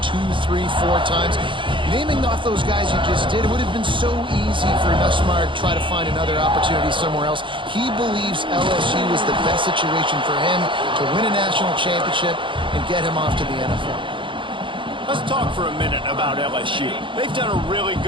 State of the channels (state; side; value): late; left; 0.24 ms